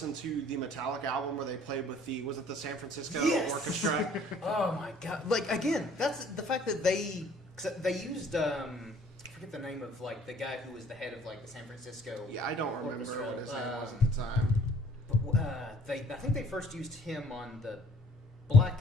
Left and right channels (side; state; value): both; normal; correlation 0.57